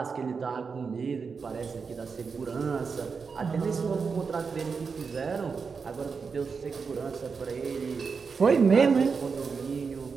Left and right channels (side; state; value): left; quieter; 5.3 dB